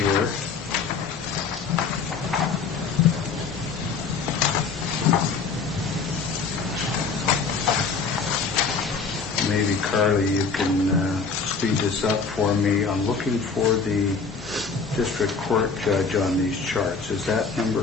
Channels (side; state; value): right; quieter; 5.0 dB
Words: maybe Carly, you can speed this up for me. I'm looking for the district court judge on these charts. Is that